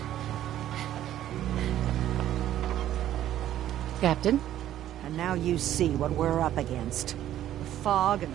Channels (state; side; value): quieter; left; 12.2 dB